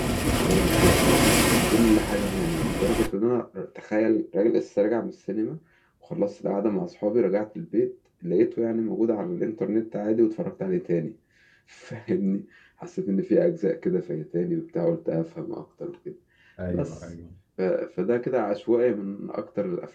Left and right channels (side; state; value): both; identical; correlation 1.00